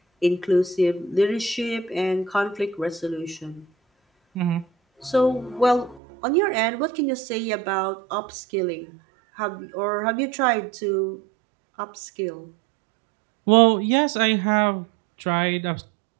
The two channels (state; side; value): drops out; left; at 6.0 s